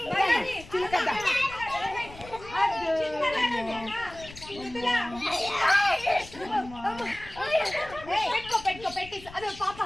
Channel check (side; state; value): left; noise; rumble, 18 dB below the sound